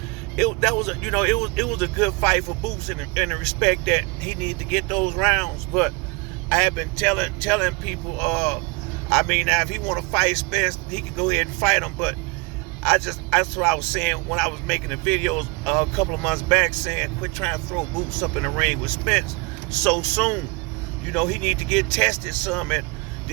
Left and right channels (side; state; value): left; quieter; 26.6 dB